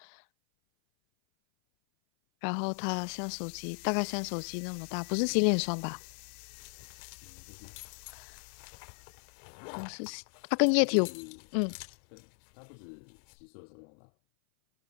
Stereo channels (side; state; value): right; silent; 55 dB below the other